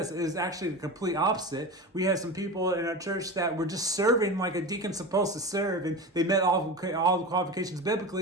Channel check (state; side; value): normal; both; correlation 0.26